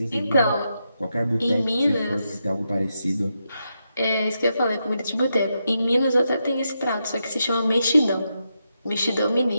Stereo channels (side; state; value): both; inverted; correlation -0.85